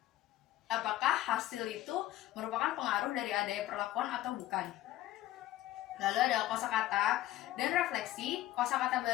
apakah hasil itu merupakan pengaruh dari adanya perlakuan atau bukan. Lalu ada kosakata dan refleksi. Kosakata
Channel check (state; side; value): quieter; right; 14.9 dB